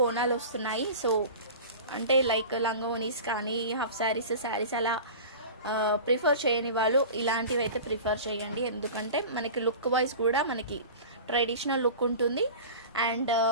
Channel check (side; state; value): both; inverted; correlation -0.35